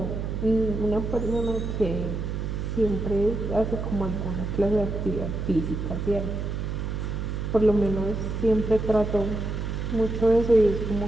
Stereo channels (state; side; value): noise; right; hum, 3 dB below the sound